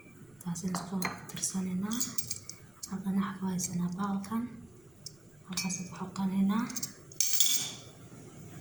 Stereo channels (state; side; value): noise; right; rumble, 29 dB below the sound